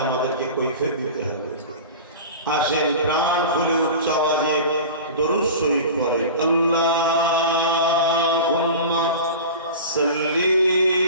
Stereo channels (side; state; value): both; inverted; correlation -0.34